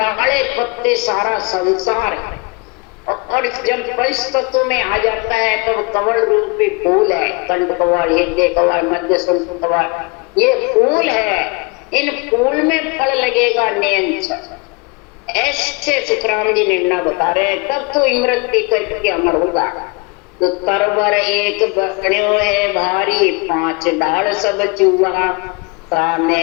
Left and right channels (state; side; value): quieter; right; 29.7 dB